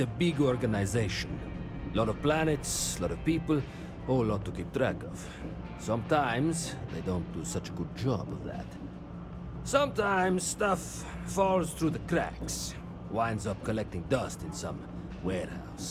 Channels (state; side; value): identical; both; correlation 1.00